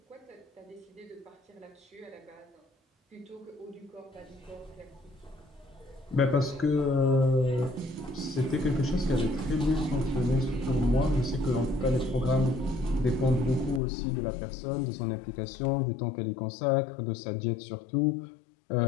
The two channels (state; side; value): drops out; right; at 13.8 s